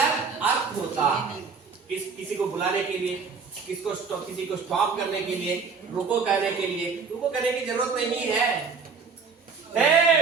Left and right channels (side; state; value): left; quieter; 5.2 dB